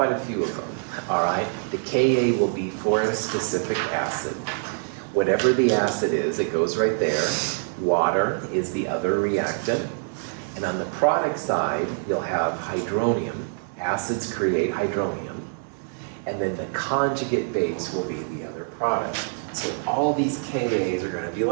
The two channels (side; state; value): left; silent; digital silence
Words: a few of them, all right, the Ka will be for a specific acid. Whatever the acid is, it goes right there. Water is the other reactant. And on the product side, you'll have hydronium. Acids create hydronium. And then the conjugate base will be the other product. So all these Kas are going to be